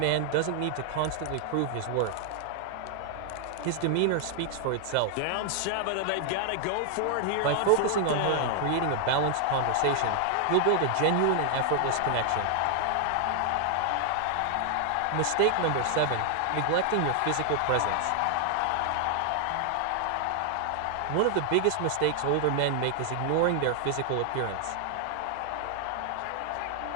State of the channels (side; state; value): both; different; correlation 0.00